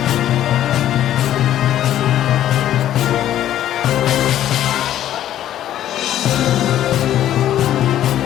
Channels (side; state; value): right; quieter; 12.0 dB